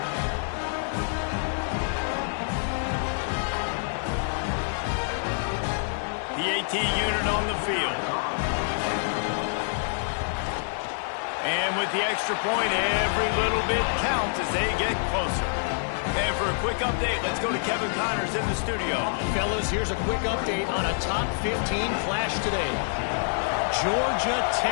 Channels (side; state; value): right; silent; 60 dB below the other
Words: The AT unit on the field. And with the extra point, every little bit counts as they get closer. And for a quick update, let's go to Kevin Connors in the studio. Fellas, here's a quick update on a top 15 clash today. Georgia